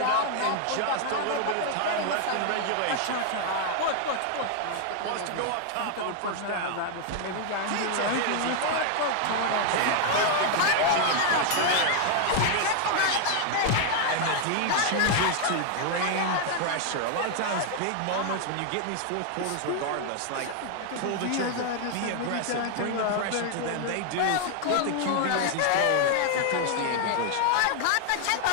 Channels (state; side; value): different; both; correlation 0.00